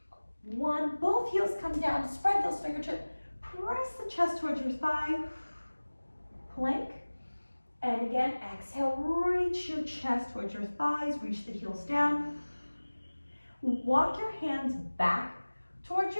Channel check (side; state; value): both; inverted; correlation -1.00